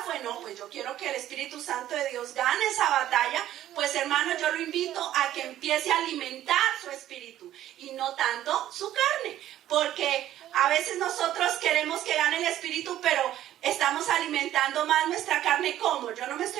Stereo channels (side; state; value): left; quieter; 12.7 dB